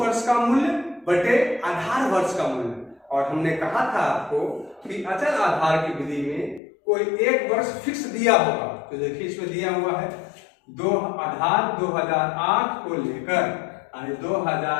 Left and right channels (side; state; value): right; drops out; at 6.6 s